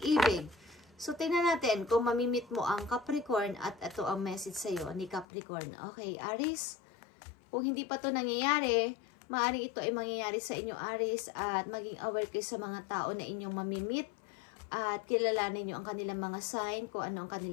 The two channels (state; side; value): drops out; right; at 5.2 s